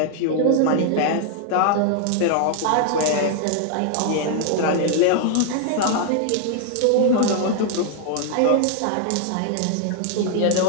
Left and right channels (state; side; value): different; both; correlation 0.00